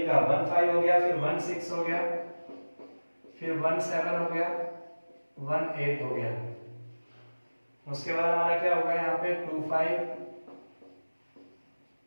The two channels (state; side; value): inverted; both; correlation -1.00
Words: का, 1 5 हो गया, फिर 1 6 हो गया, फिर 1 7 हो गया, 18 हो गया। उसके बाद हमारा क्या होगा यहाँ पे 25